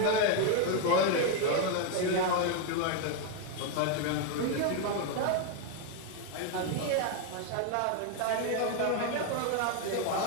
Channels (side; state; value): both; different; correlation 0.01